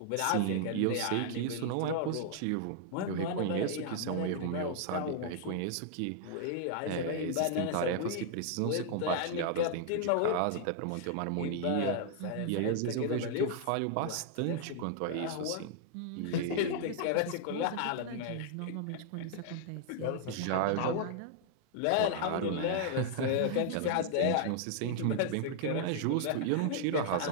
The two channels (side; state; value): both; different; correlation -0.01